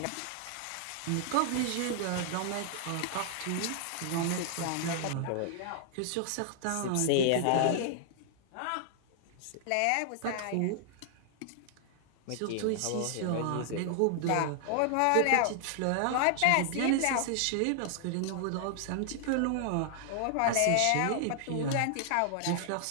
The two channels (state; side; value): different; both; correlation 0.00